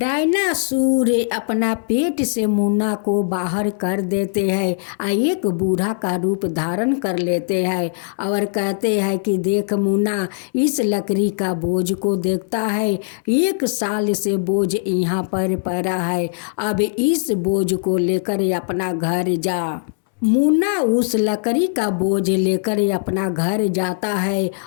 अपना पेट से मुन्ना को बाहर कर देते हैं और एक बूढ़ा का रूप धारण कर लेते हैं और कहते हैं कि देख मुन्ना, इस लकड़ी का बोझ को देखता है, 1 साल से बोझ यहाँ पर पड़ा है, अब इस बोझ को लेकर अपना घर जा। मुन्ना उस लकड़ी का बोझ लेकर अपना घर जाता है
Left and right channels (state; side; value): silent; right; 63 dB below the other